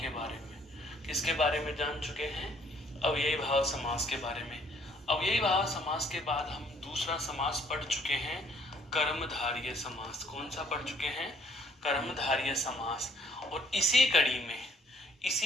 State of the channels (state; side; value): normal; both; correlation 0.62